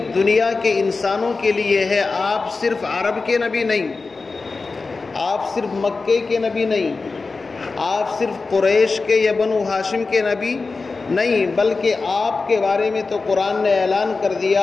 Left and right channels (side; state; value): right; quieter; 4.0 dB